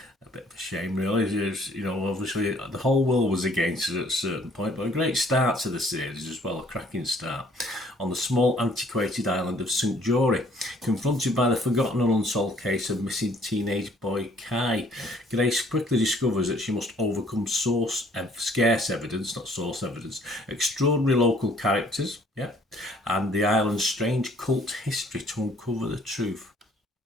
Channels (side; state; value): both; normal; correlation 0.60